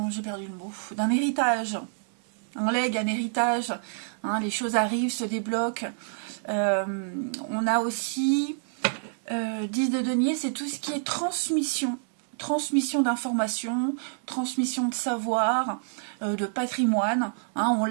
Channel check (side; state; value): left; silent; digital silence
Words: héritage, un legs, un héritage, hein, les choses arrivent, se débloquent. On a aussi 10 de denier, c'est tout ce qui est transmission d'informations, transmission de savoir, de patrimoine, hein, on